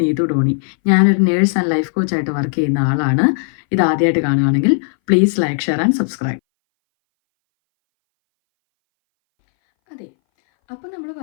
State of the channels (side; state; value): right; silent; 63 dB below the other